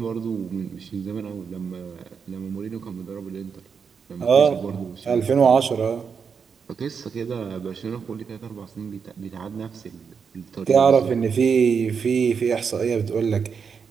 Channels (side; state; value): left; quieter; 6.2 dB